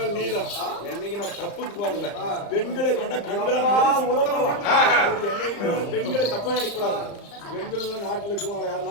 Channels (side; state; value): right; late; 35 ms